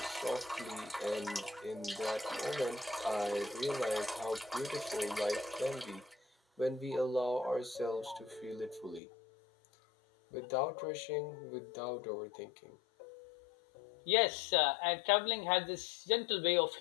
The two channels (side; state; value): right; drops out; at 9.0 s